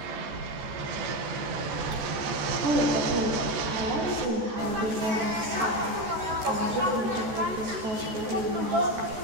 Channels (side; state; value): left; late; 13 ms